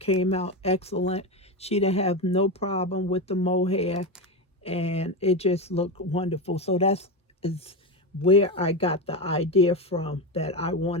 out excellent. She didn't have no problem with the mohair, and it just looked wonderful. So is where I got the idea from, that I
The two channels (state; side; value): normal; both; correlation 0.15